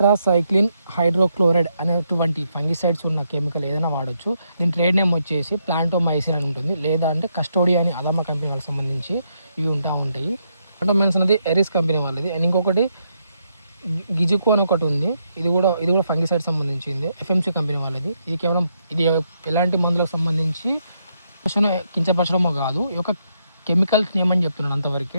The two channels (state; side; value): inverted; both; correlation -0.78